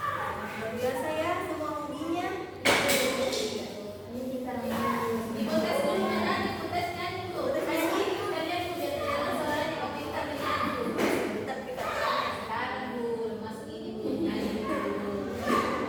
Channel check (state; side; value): identical; both; correlation 1.00